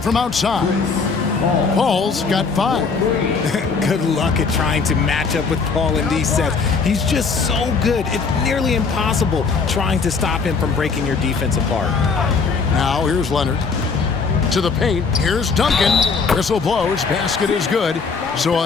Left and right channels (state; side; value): quieter; right; 5.0 dB